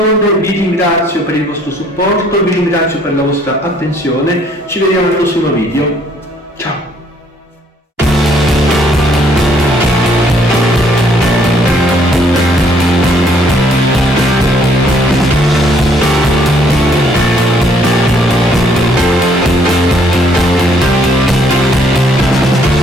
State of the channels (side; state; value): both; normal; correlation 0.64